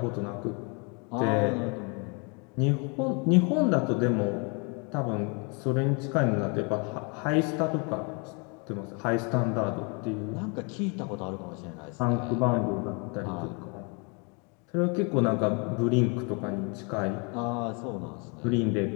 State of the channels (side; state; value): right; quieter; 34.2 dB